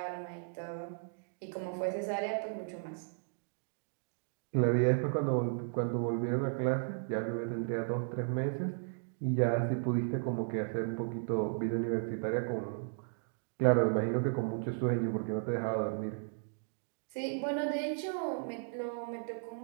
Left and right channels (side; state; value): left; silent; digital silence